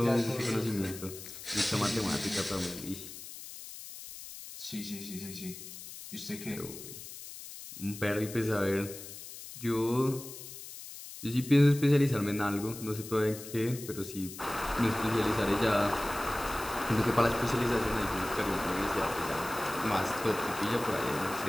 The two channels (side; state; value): left; noise; hiss, 12 dB below the sound